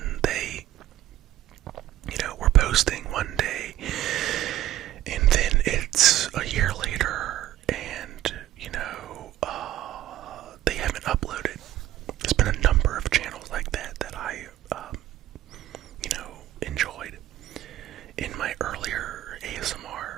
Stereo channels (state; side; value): quieter; left; 13.6 dB